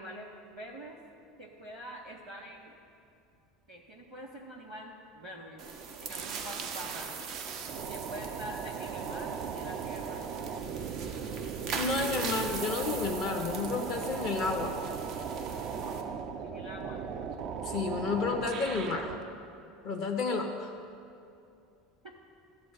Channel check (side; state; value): both; normal; correlation 0.35